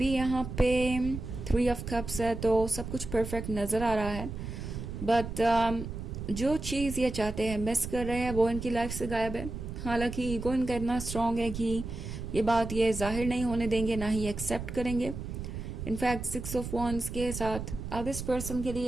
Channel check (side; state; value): right; noise; rumble, 7 dB below the sound